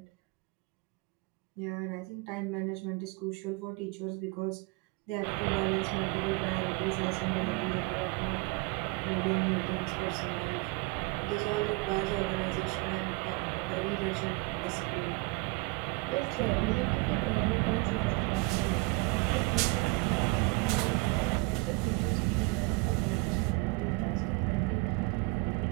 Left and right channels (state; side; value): quieter; left; 26.5 dB